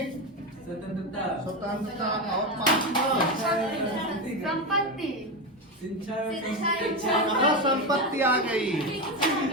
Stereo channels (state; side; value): normal; both; correlation 0.14